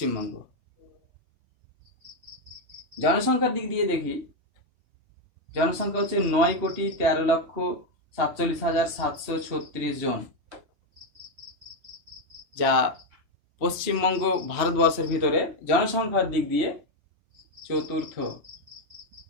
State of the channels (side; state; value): left; late; 3.1 ms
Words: জনসংখ্যার দিক দিয়ে দেখি, জনসংখ্যা হচ্ছে 9,13,47,736 জন, যা পশ্চিমবঙ্গ ভারতবর্ষের ভিতরে জনসংখ্যার দিক দিয়ে চতুর্থ।